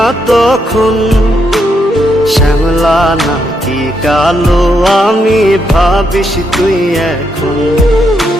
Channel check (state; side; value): normal; both; correlation 0.79